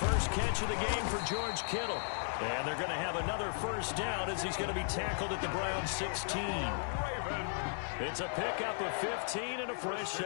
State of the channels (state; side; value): silent; right; digital silence